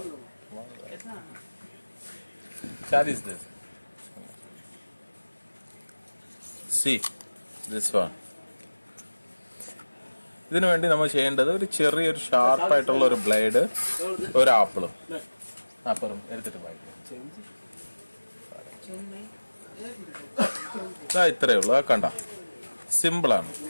സി ദിസ് വൺ. ഇതിനു വേണ്ടി നമ്മൾ ചെയ്യേണ്ടത് ഒരു ചെറിയൊരു ഷാർപ്പായിട്ടുള്ള ഒരു ബ്ലേഡ്, ഒരു ആപ്പിളും എടുത്തിട്ട് വായിക്കും. ഇത്രയേ ഉള്ളൂ. കണ്ട, സിമ്പിളാണ്.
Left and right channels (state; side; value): inverted; both; correlation -1.00